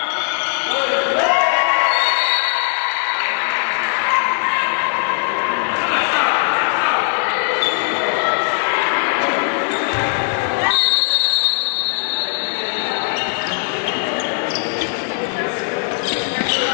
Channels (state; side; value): silent; right; 64 dB below the other